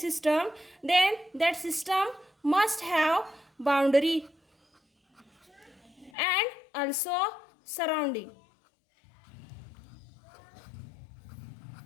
then that system must have boundary and also surrounding.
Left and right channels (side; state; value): right; drops out; at 6.1 s